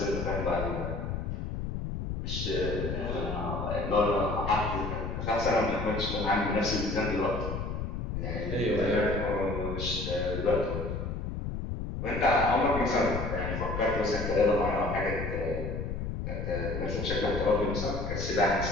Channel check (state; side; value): noise; left; rumble, 4 dB below the sound